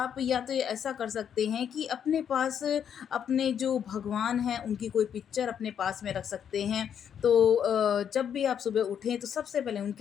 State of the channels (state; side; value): quieter; right; 8.5 dB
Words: या तो ऐसा कर सकते हैं कि अपने पास अपने जो भगवान हैं उनकी कोई पिक्चर अपने पास में रख सकते हैं। तो जब भी आप सुबह उठें तो सबसे पहले